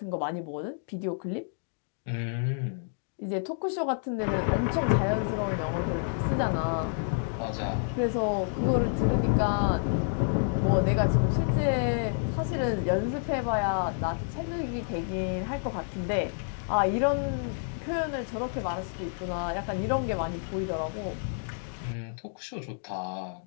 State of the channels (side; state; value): right; silent; digital silence